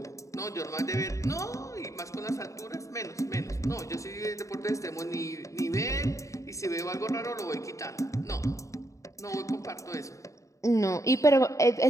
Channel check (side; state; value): right; late; 0.15 ms